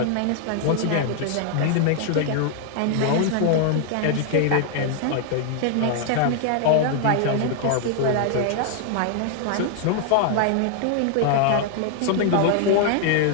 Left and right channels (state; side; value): different; both; correlation 0.00